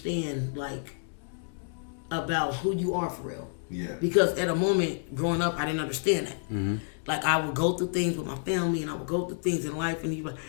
like about who you are for real. Yeah. Because at a moment growing up, I didn't understand that. Mm-hmm. Like I would go through things with my family, and I would go through things in life,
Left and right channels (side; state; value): right; silent; digital silence